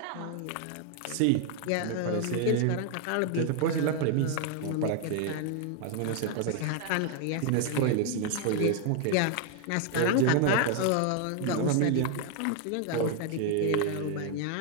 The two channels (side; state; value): both; different; correlation 0.00